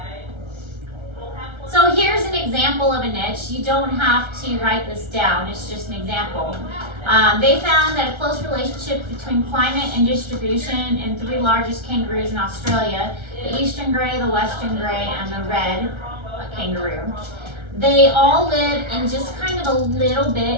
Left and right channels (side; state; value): left; late; 1.3 ms